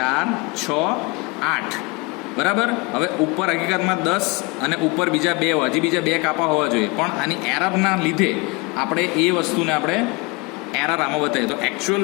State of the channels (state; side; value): quieter; right; 27.4 dB